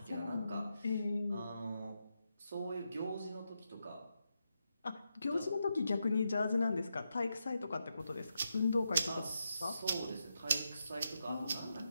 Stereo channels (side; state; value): both; inverted; correlation -0.85